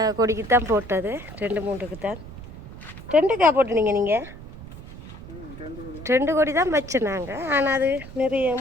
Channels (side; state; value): right; noise; rumble, 14 dB below the sound